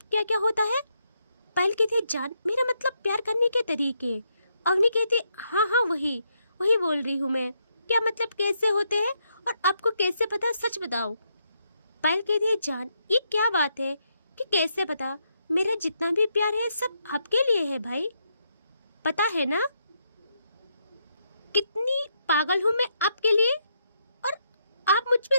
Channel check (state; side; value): inverted; both; correlation -0.79